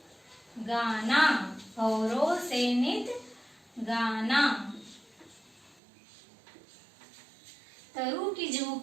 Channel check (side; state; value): left; drops out; at 5.8 s